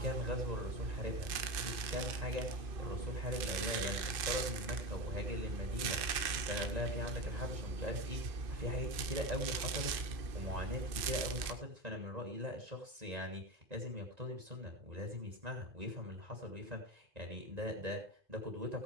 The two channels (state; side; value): late; left; 2.5 ms